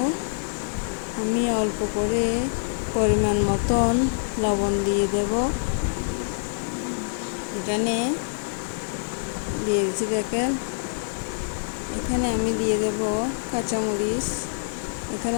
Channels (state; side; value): silent; right; 61 dB below the other